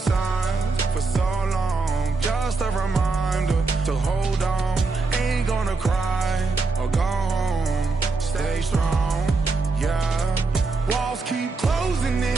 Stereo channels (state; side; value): quieter; left; 3.9 dB